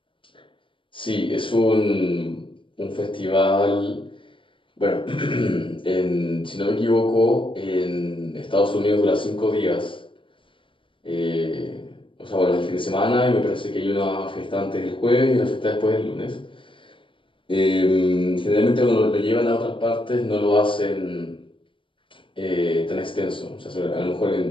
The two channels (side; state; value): right; late; 0.25 ms